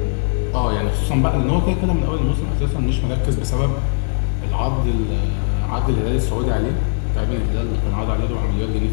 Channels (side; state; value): right; silent; 63 dB below the other